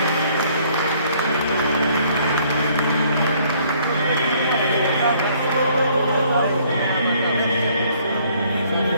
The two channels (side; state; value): both; inverted; correlation -0.62